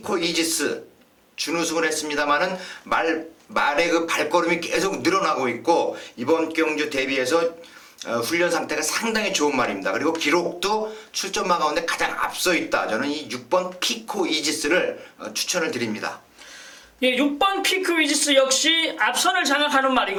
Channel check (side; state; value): both; identical; correlation 1.00